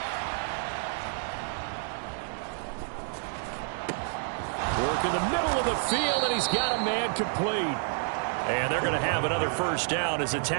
Work in the middle of the field, and he's got a man complete. And they're going to have another first down as the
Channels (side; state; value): left; silent; 58 dB below the other